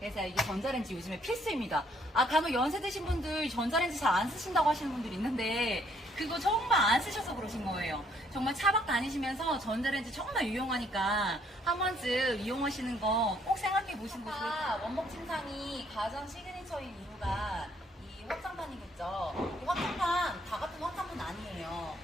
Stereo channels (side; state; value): both; normal; correlation 0.67